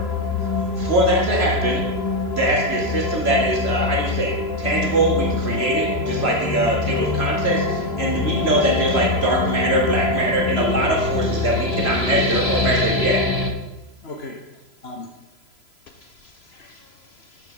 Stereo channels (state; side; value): late; right; 3.0 ms